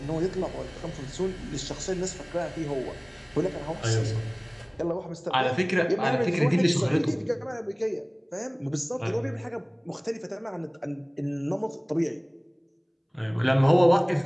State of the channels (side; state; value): both; identical; correlation 1.00